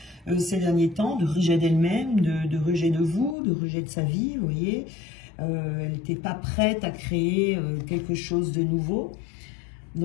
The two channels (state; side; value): drops out; right; at 3.4 s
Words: ces derniers temps, de rejet d'elle-même, de rejet de vous, de rejet de sa vie, vous voyez. Elle n'était pas prête à créer quelque chose de nouveau,